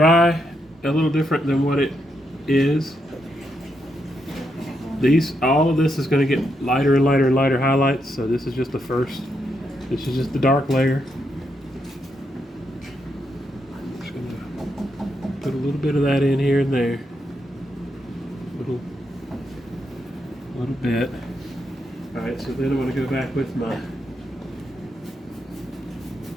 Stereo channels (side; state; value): both; normal; correlation 0.81